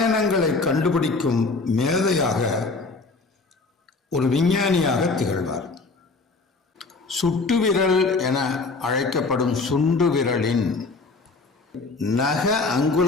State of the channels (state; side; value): quieter; right; 3.8 dB